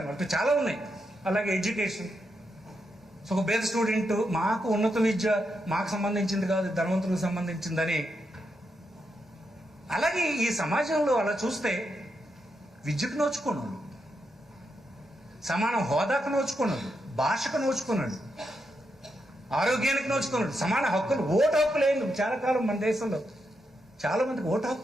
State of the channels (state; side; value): normal; both; correlation 0.83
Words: అటు చాలా ఉన్నాయి. అలాగే ఎడ్యుకేషన్. సో ఒక పేద స్టూడెంట్, మాకు ఉన్నత విద్య మాకు సంబంధించింది కాదు, ధనవంతులకు సంబంధించిందని అలాగే ఈ సమాజంలో అలా చూస్తే విద్యకు నోచుకున్నాడు, సమాన హోదాకు నోచుకున్నాడు, భాషకు నోచుకున్నాడు, ఆరోగ్యానికి నోచుకున్నాడు, సమాన హక్కులు, ఓటు హక్కు లేదు. చాలా కాలం మన దేశంలో చాలా మందికి ఓటు